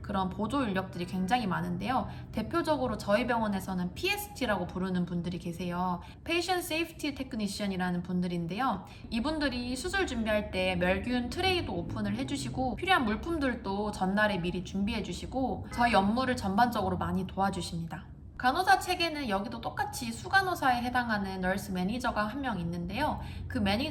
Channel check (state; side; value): identical; both; correlation 1.00